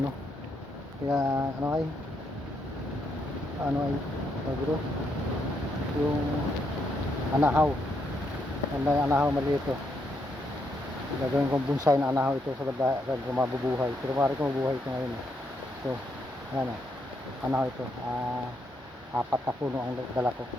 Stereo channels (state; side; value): normal; both; correlation 0.77